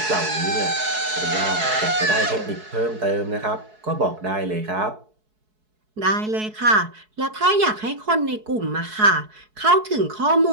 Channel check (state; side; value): late; left; 4.7 ms